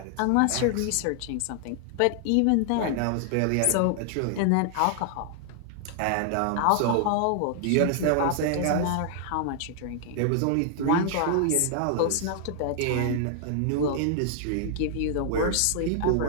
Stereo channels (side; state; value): both; different; correlation 0.00